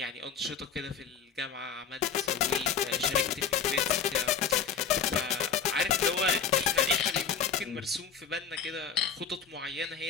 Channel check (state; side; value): quieter; right; 6.9 dB